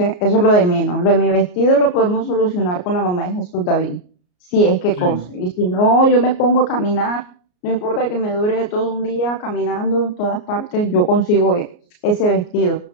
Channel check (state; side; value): late; right; 33 ms